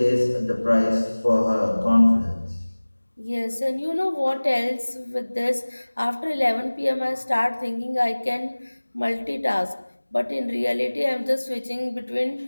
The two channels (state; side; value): inverted; both; correlation -1.00